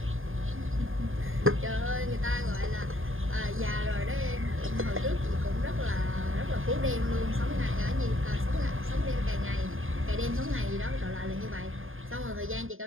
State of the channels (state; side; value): late; left; 0.59 ms